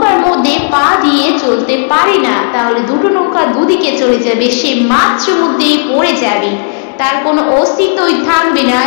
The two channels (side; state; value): right; silent; digital silence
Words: মধ্যে পা দিয়ে চলতে পারে না, তাহলে দুটো নৌকা দুদিকে চলে যাবে, সে মাঝ মধ্যে পড়ে যাবে, তার কোনো অস্তিত্বই থাকবে না।